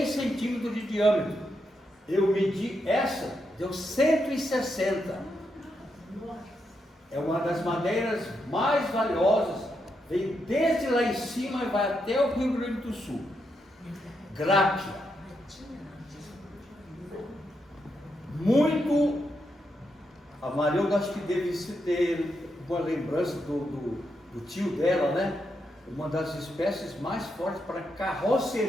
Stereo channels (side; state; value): both; normal; correlation 0.82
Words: centímetros de diâmetro. Eu medi essa, deu 160. É uma das madeiras mais valiosas, vem desde lá em cima e vai até o Rio Grande do Sul. Gráquia. Muito, a Marilda acho que deve ter uma lembrança do tio dela, né? Uma das espécies mais fortes para